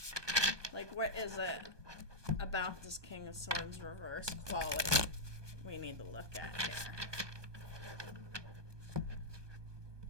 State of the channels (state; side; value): late; left; 1.2 ms